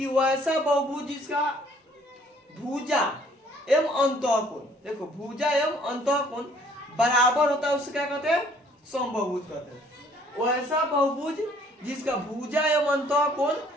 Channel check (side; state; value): both; normal; correlation 0.59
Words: वैसा बहुभुज जिसका भुजा एवं अंतः कोण, देखो भुजा एवं अंतः कोण बराबर होता है, उससे क्या कहते हैं, समबाहुभुज कहते हैं। वैसा बहुभुज जिसका भुजा एवं अंतः कोण